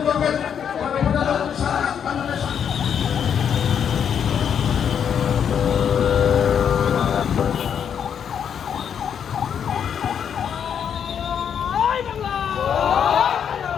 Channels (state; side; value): quieter; right; 8.0 dB